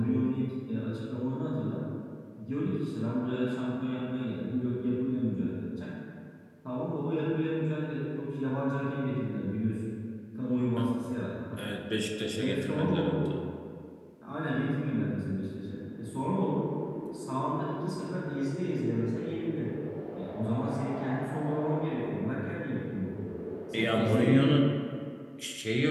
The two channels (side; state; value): both; identical; correlation 1.00